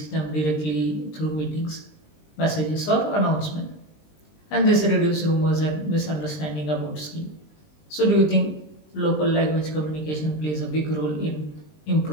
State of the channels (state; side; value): late; right; 20 ms